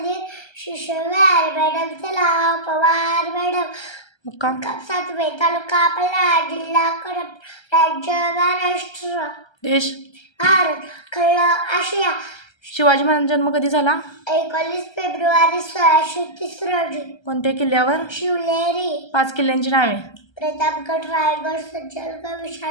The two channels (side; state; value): right; late; 1.3 ms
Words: शिशुवार. मॅडमचे नाव पवार मॅडम. मुक्काम 7वे. तालुका पल्हाळ. जिल्हा कोल्हापूर. राज्य महाराष्ट्र. देश भारत. खंड आशिया. शिवाजी महाराजांचा जन्म कधी झाला? 19 फेब्रुवारी 1630 रोजी. कोणत्या किल्ल्यावर? शिवनेरी. 5 किल्ल्यांची नावे. प्रतापगड. रायगड. सज्जनगड.